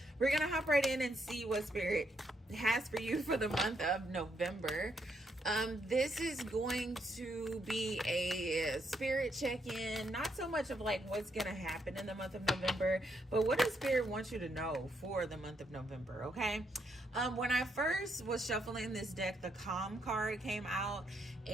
We're going to hop right in and see what Spirit has for you for the month of November. This is going to be a spirit check-in, not so much of like what's going to happen in the month of November, but what does Spirit want you to know for the month of November, okay? When I first was shuffling this deck, the Calm card came out,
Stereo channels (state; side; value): normal; both; correlation 0.77